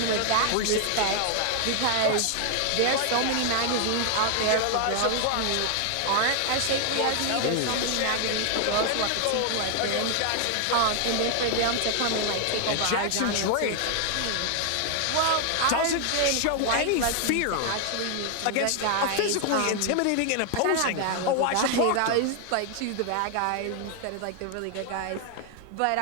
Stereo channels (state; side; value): different; both; correlation 0.00